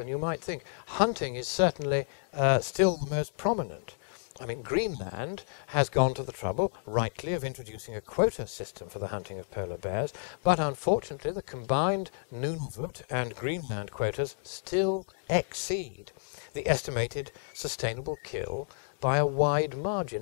you might think. Hunting is certainly still the most prominent. I mean, Greenland has gone to the trouble, rightly, of introducing a quota system for the hunting of polar bears, but unfortunately the combined Nunavut and Greenland quotas still exceed the estimated sustainable kill by a wide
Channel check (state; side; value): silent; right; digital silence